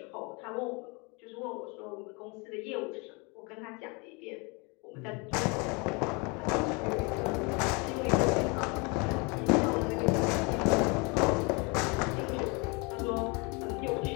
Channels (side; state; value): right; quieter; 30.1 dB